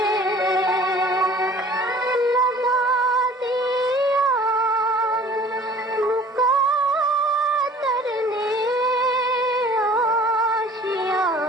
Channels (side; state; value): both; normal; correlation 0.49